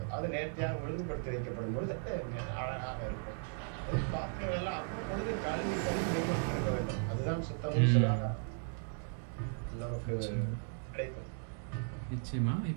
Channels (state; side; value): silent; left; 54 dB below the other